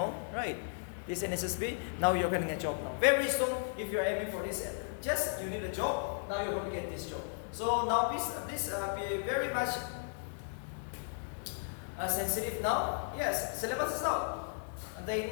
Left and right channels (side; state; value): right; silent; digital silence